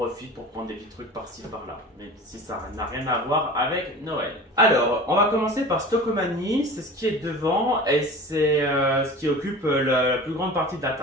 pour prendre des petits trucs par-ci par-là, même si ça n'a rien à voir avec Noël. Alors, on va commencer par Stockomanie, c'est ce qui est devant et c'est ce qui occupe la plus grande partie de la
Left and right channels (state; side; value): normal; both; correlation 0.37